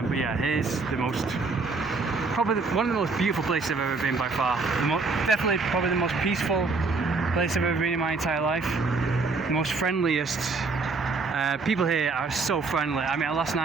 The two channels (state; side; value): quieter; left; 4.0 dB